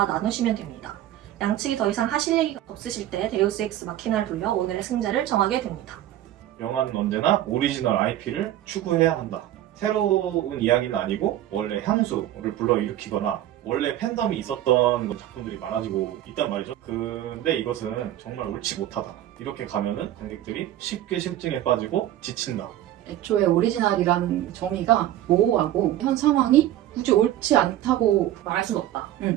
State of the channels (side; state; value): left; quieter; 13.0 dB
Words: 나누시면 됩니다. 양측이 더 이상 하실 얘기가 없으실 때 데우스 엑스 마키나를 돌려 오늘의 승자를 정하게 됩니다. 영화는 언제나 오리지널 IP를 추구해야 한다. 새로운 이야기는 아니고 원래 향수를 불러일으키거나 원래 팬덤이 있었던 작품들이 많아지고 있단 말이죠. 근데 이것은 정말 옳지 못하다. 이렇게 가면은 관객들이 쉽게 실증에 빠지고 지친다. 애초에 오리지널이라는 정의가 모호하고 현 상황이 굳이 옳지 않다고 말할 수는 없다.